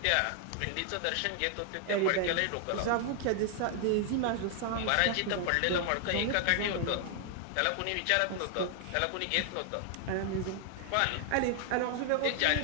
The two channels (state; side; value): different; both; correlation 0.00